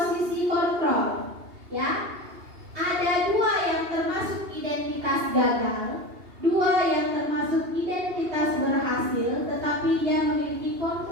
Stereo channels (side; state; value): left; late; 2.8 ms